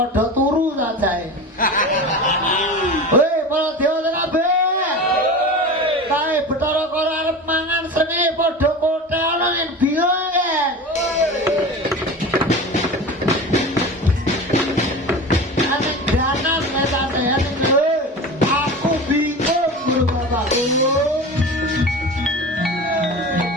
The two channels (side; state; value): both; normal; correlation 0.31